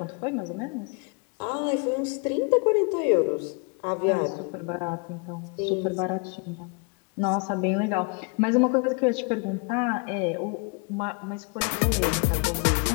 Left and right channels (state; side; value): quieter; right; 34.4 dB